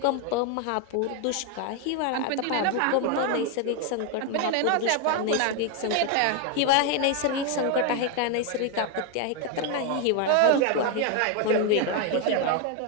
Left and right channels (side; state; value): both; different; correlation 0.01